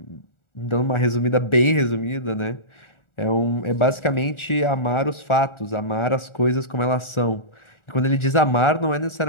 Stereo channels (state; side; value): late; right; 1.4 ms